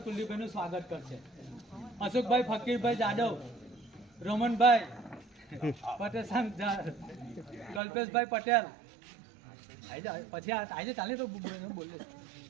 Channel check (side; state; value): left; drops out; at 7.8 s